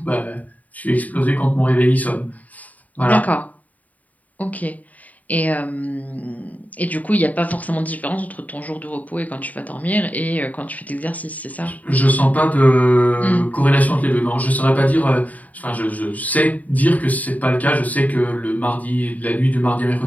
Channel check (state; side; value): late; right; 0.074 ms